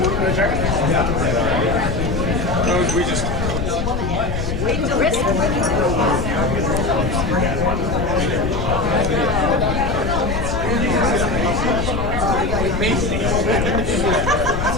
We just wait till risk.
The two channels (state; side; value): noise; left; rumble, 4 dB below the sound